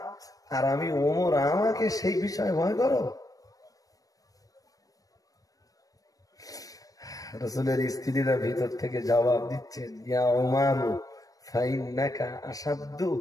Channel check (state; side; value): late; right; 0.17 ms